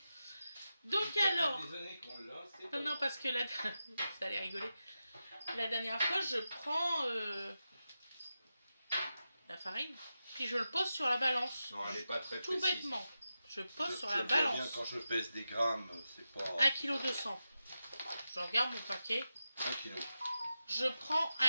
Donc Ça fait alors... des années qu'on l'a, c'est Non, non, parce que là... Vous allez rigoler. La dernière fois, je prends la farine, puis je le pose sur la balance. Non, elle n'est pas très Tout précise. bêtement. Je pose sur Je la le vois bien balance. quand je pèse des grammes, c'est pas... 1,2 kg. Je regarde mon paquet. 1 kilo. Je prends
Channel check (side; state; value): both; inverted; correlation -0.91